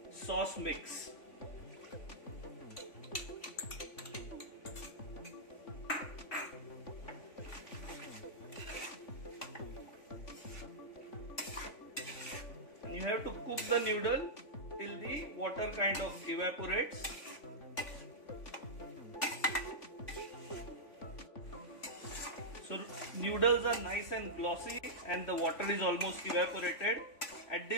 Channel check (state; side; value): late; right; 3.5 ms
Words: sauce mix. And you have to cook the noodle till the water kind of evaporates. So noodles are nice and glossy and the water is almost evaporated. At